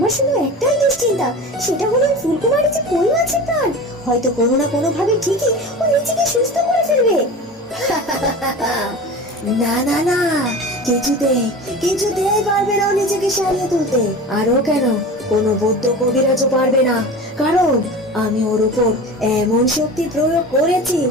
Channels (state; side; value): normal; both; correlation 0.33